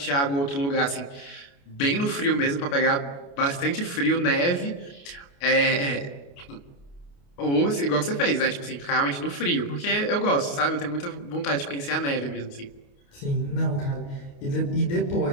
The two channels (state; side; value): late; right; 29 ms